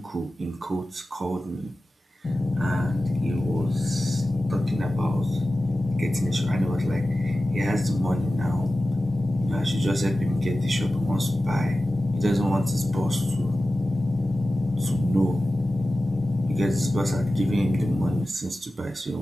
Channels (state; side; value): normal; both; correlation 0.94